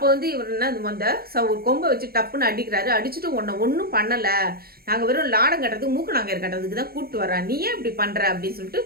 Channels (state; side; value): late; left; 0.44 ms